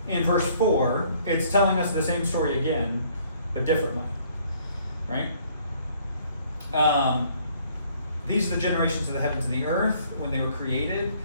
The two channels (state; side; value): inverted; both; correlation -0.61